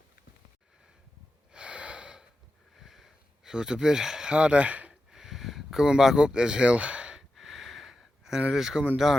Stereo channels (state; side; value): normal; both; correlation 0.90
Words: So it's a bit harder coming back up this hill than it is coming